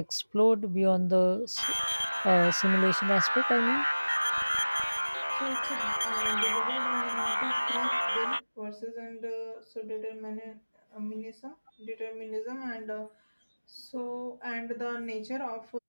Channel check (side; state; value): both; inverted; correlation -1.00